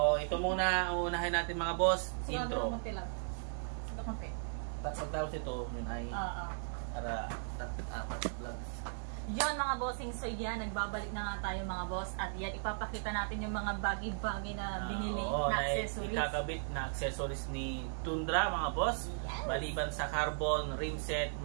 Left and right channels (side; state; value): left; silent; digital silence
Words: ito muna, unahin natin mga boss, intro. Pagtapos ito, yun ay para apat vlog. Yon mga bossing, so yan, nagbabalik na nga tayo mga boss, at yan, ipapakita natin yung mga bagay-bagay na binili na accessories. Ikakabit na accessories ni Tundra mga boss. Yes. Maliban sa carbon, rim set,